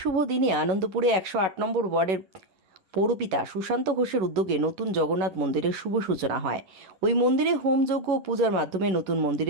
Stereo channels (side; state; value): left; late; 11 ms